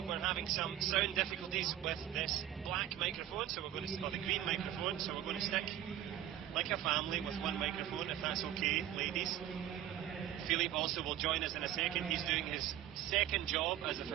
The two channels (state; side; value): quieter; left; 11.8 dB